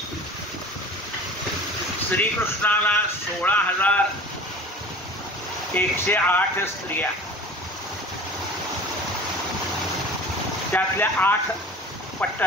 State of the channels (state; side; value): normal; both; correlation 0.41